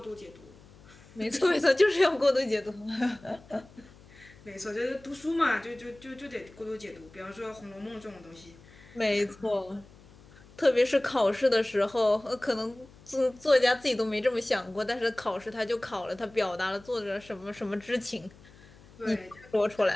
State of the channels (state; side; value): noise; left; hum, 24 dB below the sound